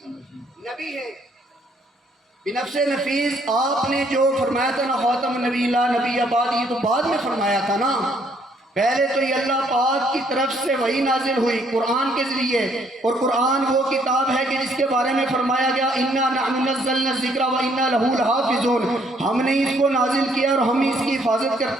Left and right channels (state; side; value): normal; both; correlation 0.67